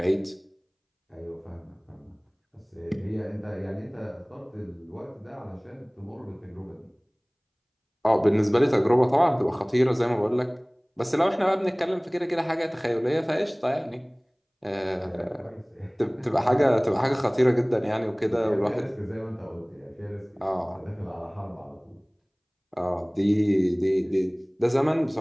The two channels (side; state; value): both; identical; correlation 1.00